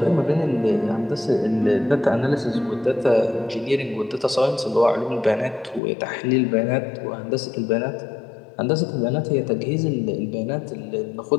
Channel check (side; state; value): right; drops out; at 5.8 s